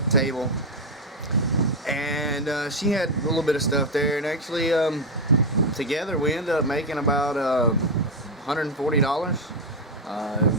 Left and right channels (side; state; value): both; normal; correlation 0.06